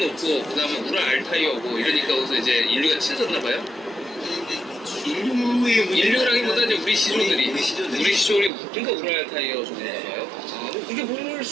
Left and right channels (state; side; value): drops out; left; at 8.5 s